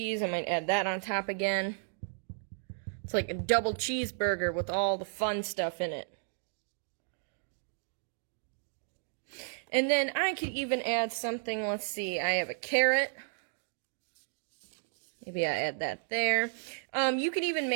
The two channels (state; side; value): silent; left; digital silence